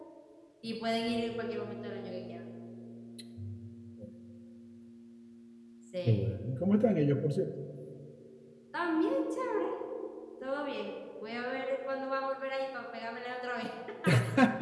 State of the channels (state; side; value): identical; both; correlation 1.00